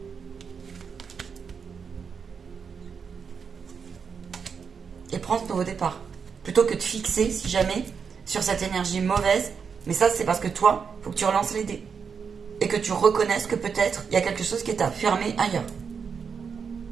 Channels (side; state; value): left; quieter; 6.2 dB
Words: Et prends ce nouveau départ. Plutôt que de fixer, si jamais, sur cette énergie mauvaise. Mais ça, c'est parce que toi, il faut que tu relances les dés. Et que tu reconnaisses que peut-être, il y a quelque chose qui t'a fermé ailleurs.